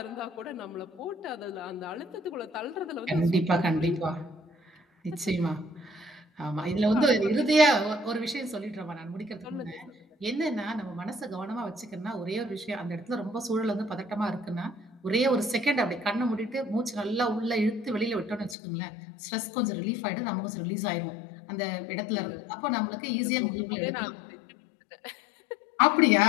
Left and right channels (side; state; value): right; drops out; at 18.6 s